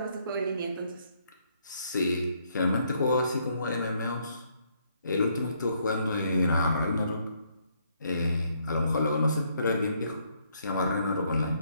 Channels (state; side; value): inverted; both; correlation -0.71